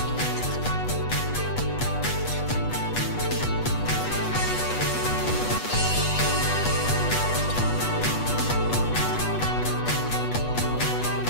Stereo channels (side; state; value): right; late; 8.2 ms